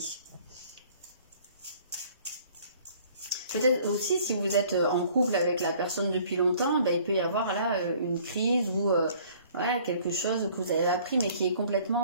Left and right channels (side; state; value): both; inverted; correlation -0.55